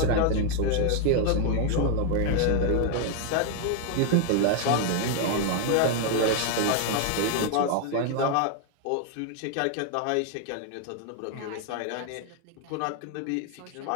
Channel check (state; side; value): different; both; correlation 0.01